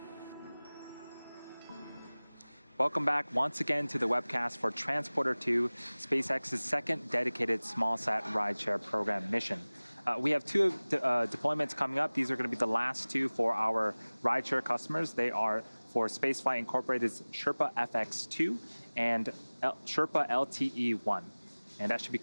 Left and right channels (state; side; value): inverted; both; correlation -1.00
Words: Welcome back once again to the webcast for Transporter-2, SpaceX's second dedicated small-sat rideshare program mission. We have two deployments coming up. These are going to be the last two for our rideshare customers. They are for Spaceflight Incorporated's Sherpa FX2 and Sherpa LTE-1. And that should be